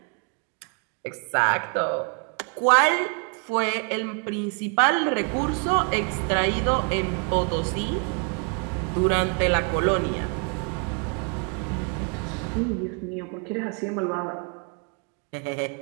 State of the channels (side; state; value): left; quieter; 37.6 dB